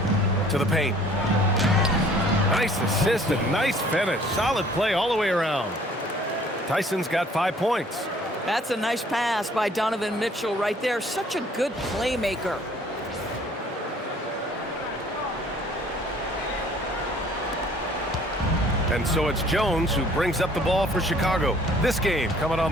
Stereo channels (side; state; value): both; normal; correlation 0.55